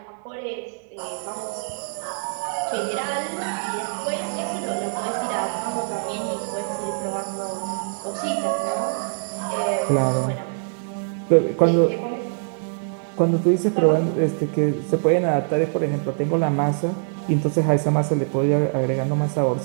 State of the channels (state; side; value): silent; left; digital silence